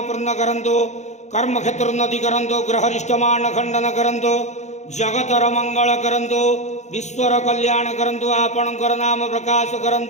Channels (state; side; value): late; right; 0.34 ms